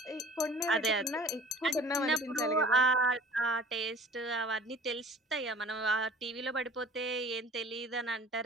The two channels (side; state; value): both; normal; correlation 0.47